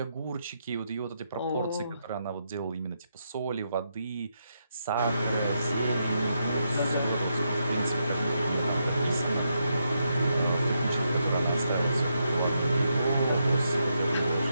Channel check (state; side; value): inverted; both; correlation -0.81